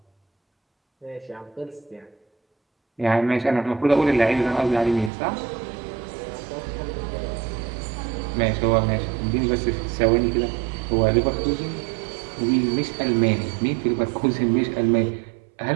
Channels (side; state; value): left; drops out; at 5.1 s